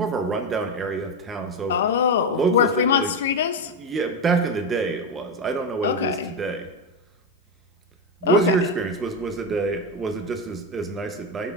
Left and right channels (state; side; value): normal; both; correlation 0.11